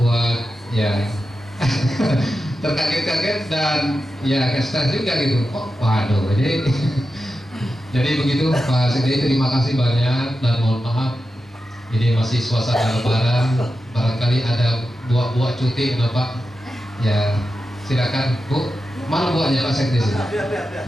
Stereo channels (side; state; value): both; normal; correlation 0.90